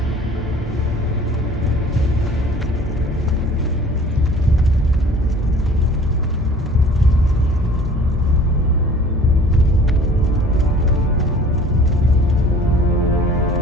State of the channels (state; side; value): normal; both; correlation 0.49